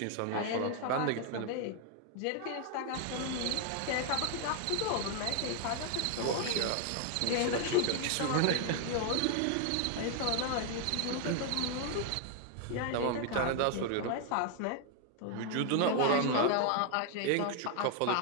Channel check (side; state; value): both; different; correlation 0.00